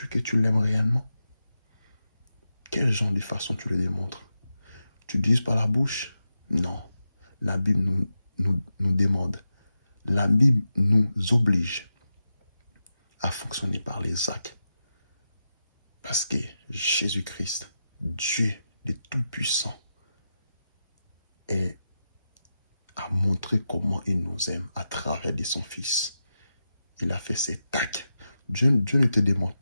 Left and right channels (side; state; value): both; inverted; correlation -0.90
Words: que tu l'aimes réellement? Quel genre de façon tu le démontres? Tu dises par la bouche? Non. La Bible nous demande. La Bible nous oblige à fonctionner par les actes. Parce que Jésus-Christ, Dieu le Tout-Puissant, a montré comment il nous aime à travers de son Fils. Il a fait cet acte. Dieu ne te demande